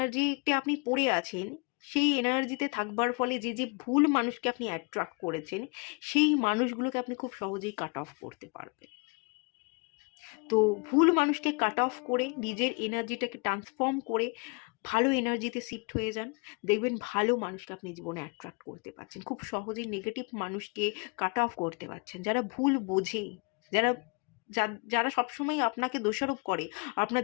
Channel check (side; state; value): right; quieter; 31.0 dB